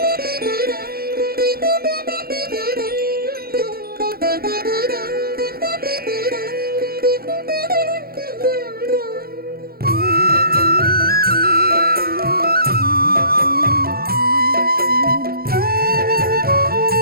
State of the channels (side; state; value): left; late; 0.44 ms